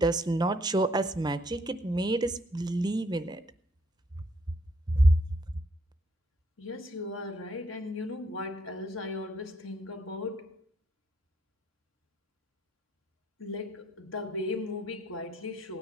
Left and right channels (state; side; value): normal; both; correlation 0.69